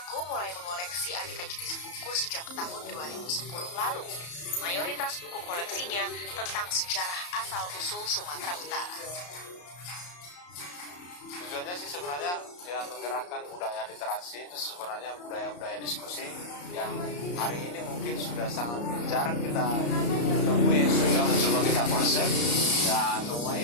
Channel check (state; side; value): late; right; 34 ms